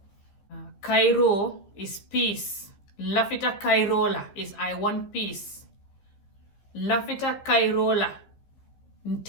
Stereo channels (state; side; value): late; right; 15 ms